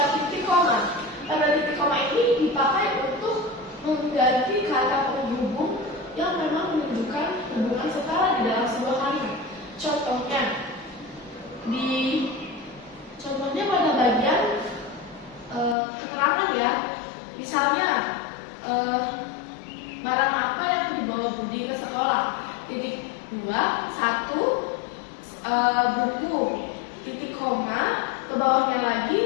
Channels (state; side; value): drops out; right; at 15.8 s